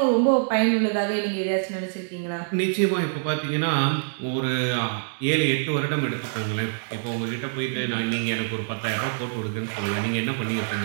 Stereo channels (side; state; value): left; silent; digital silence